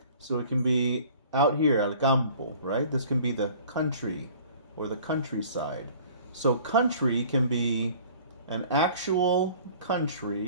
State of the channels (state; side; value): inverted; both; correlation -0.49